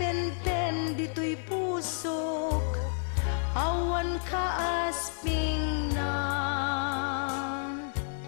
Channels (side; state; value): right; silent; 58 dB below the other